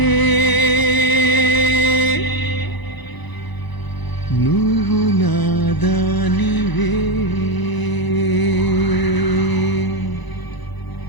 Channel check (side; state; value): right; late; 1.0 ms